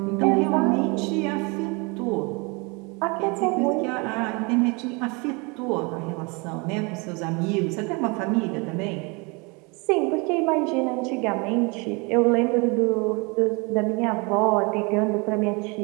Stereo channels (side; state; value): left; quieter; 29.4 dB